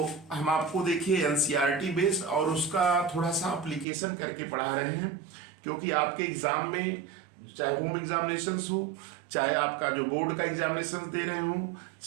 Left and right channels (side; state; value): left; drops out; at 3.9 s